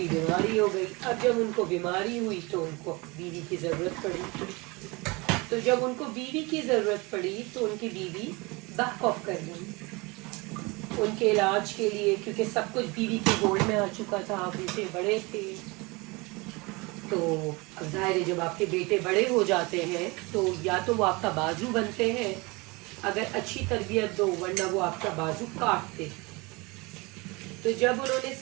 بیماری ہو گئی. اب جب ان کو بیماری ہوئی تو ان کو بیوی کی ضرورت پڑی. تو جب ان کو بیوی کی ضرورت پڑی تو ان کی بیوی بیک آف کر گئی ان کے علاج کے لیے، کیونکہ سب کچھ بیوی کے گولڈ میں آ چکا تھا. بیٹے بڑے تھے، تو اب ظاہر ہے جب آپ کے بیٹے بڑے ہو جاتے ہیں تو یا تو وہ آپ کا بازو بنتے ہیں اگر اچھی تربیت دو، ورنہ وہ آپ کا بازو کاٹتے. تو جب انہوں نے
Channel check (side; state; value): left; quieter; 25.8 dB